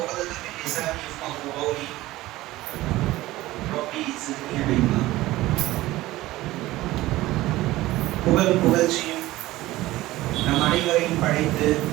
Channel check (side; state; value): left; quieter; 17.3 dB